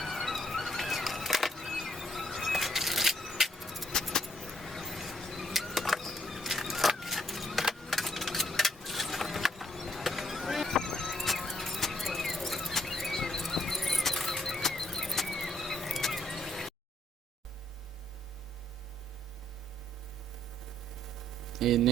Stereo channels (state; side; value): normal; both; correlation 0.69